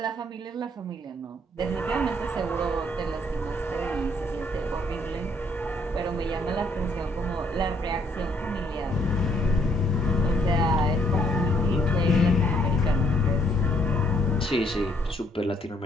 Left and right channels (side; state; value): both; normal; correlation 0.68